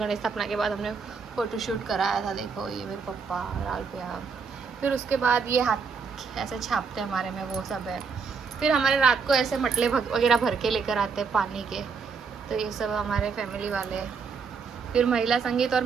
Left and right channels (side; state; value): left; quieter; 5.4 dB